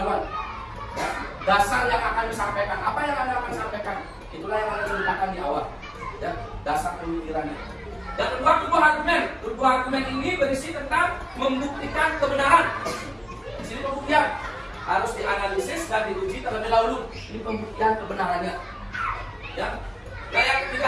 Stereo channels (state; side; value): identical; both; correlation 1.00